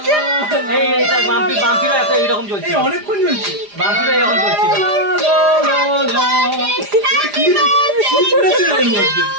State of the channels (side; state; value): left; late; 4.9 ms